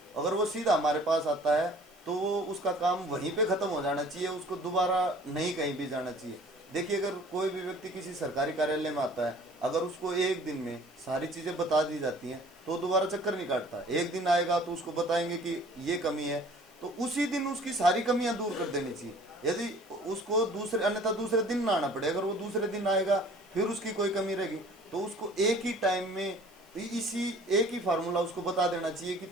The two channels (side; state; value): right; noise; hiss, 29 dB below the sound